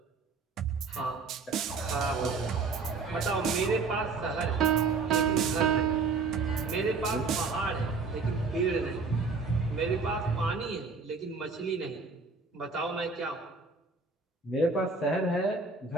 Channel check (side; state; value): left; quieter; 4.4 dB